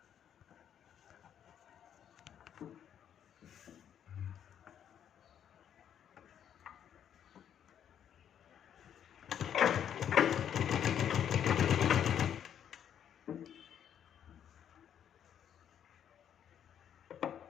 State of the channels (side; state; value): right; quieter; 9.3 dB